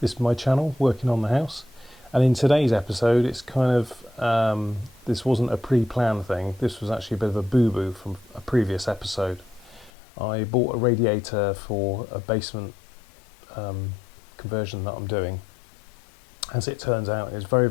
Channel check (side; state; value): right; drops out; at 9.9 s